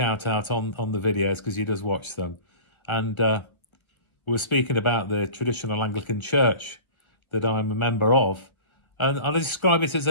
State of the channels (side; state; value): right; late; 1.3 ms